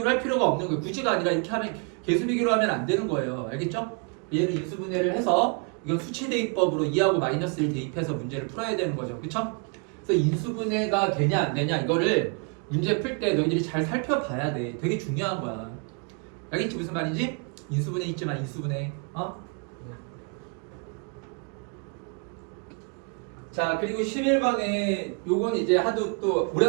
할 필요가 없는 거예요. 굳이가 아니라 이렇게 하면 개수 비교로 하면 안 되는 거예요. 알겠죠? 얘를 인수분해를 해서 이건 수치 대입법으로 2하고 마이너스 1 대입해서 문제를 풀어야 되는 거죠. 그쵸? 그래서 인수분해가 되냐 안 되냐 이거를 문제 풀 때 너희들이 잘 살펴봐야 돼. 되게 중요한 거야. 알겠지? 무슨 말인지? 인수분해 있지만 인수분해. 자, 그리고 11번에 요건 이제 하도 또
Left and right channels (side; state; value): left; quieter; 37.2 dB